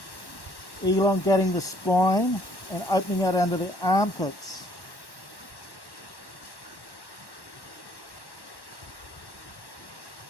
elongating the spine, and opening out under the armpits.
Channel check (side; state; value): right; late; 1.1 ms